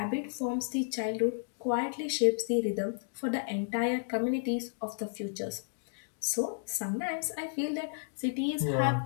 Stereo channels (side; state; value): right; silent; digital silence